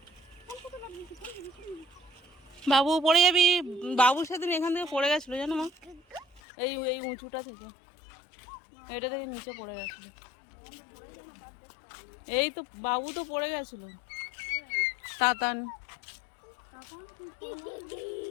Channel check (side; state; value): right; drops out; at 6.4 s